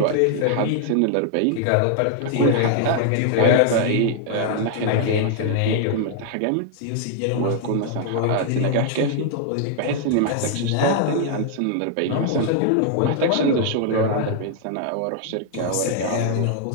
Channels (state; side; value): different; both; correlation 0.00